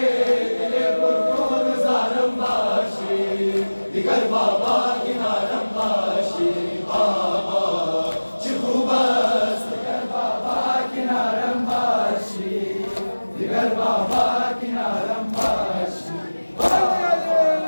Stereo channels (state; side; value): inverted; both; correlation -1.00